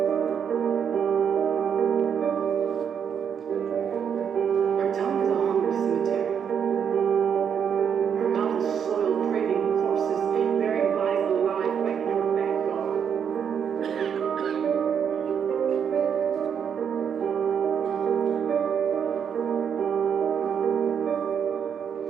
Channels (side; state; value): left; quieter; 7.6 dB